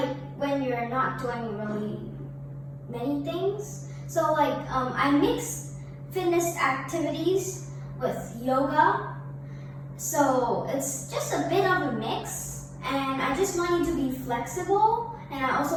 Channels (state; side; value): identical; both; correlation 1.00